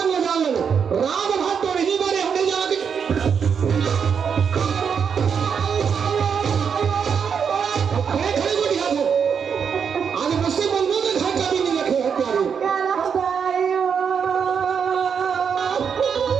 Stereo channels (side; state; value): left; quieter; 6.9 dB